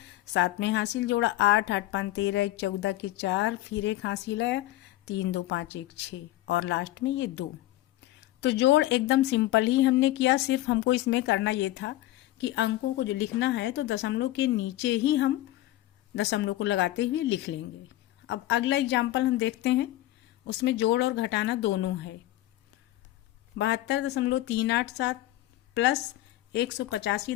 7 में हासिल जोड़ा 8 8 5 13 1 14 के 4, फिर 1 हासिल आया 3 2 5 1 6 और लास्ट में ये 2। तो जोड़ एकदम सिंपल ही हमने किया, सिर्फ हमको इसमें करना ये था कि अंकों को जो लिखना है तो दशमलव के नीचे ही हम दशमलव को लगाते हुए लिख लेंगे। अब अगला एग्जाम्पल हम देखते हैं, उसमें जोड़ और घटाना दोनों है। 72.387 प्लस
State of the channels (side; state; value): right; quieter; 15.7 dB